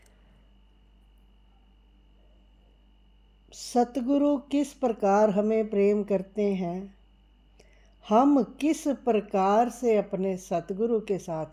सतगुरु किस प्रकार हमें प्रेम करते हैं, हम किस प्रकार से अपने सतगुरु के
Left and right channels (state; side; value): identical; both; correlation 1.00